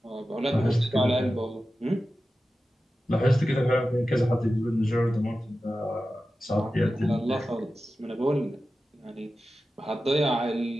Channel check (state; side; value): normal; both; correlation 0.93